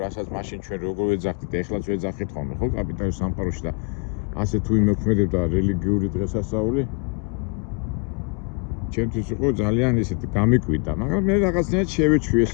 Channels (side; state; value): right; quieter; 34.7 dB